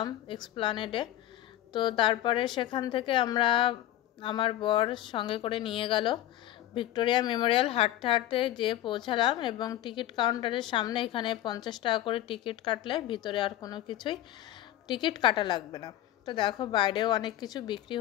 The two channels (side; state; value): right; quieter; 13.6 dB